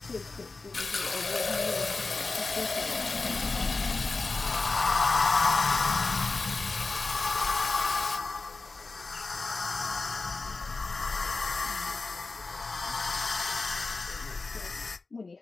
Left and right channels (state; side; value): quieter; right; 3.8 dB